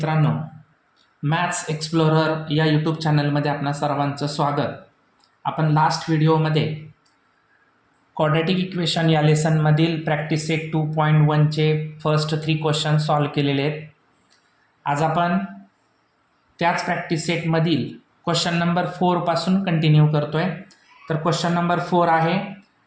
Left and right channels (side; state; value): both; identical; correlation 1.00